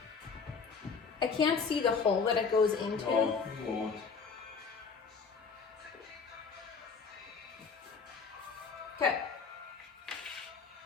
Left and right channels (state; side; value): quieter; right; 5.3 dB